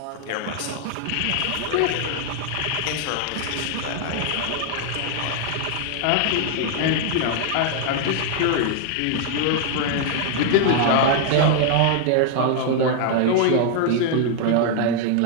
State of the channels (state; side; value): different; both; correlation 0.00